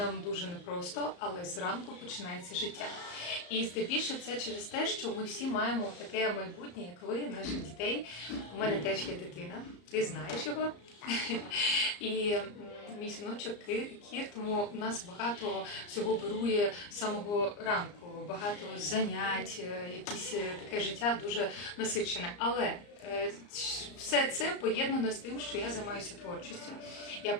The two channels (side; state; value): right; late; 34 ms